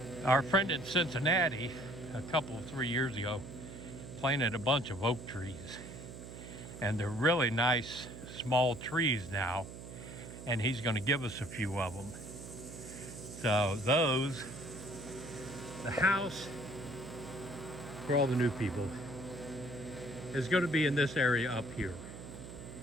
Our friend in Cincinnati, a couple of 3 years ago, planted a bunch of oak trees, and they're really nice small trees now, and he's going to give us a few of them. So those, the house for all the new people is going to be in this area up here.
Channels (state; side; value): noise; right; hum, 12 dB below the sound